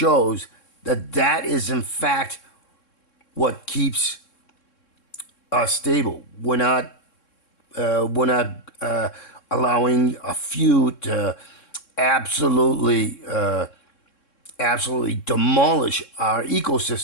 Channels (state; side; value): late; right; 3.6 ms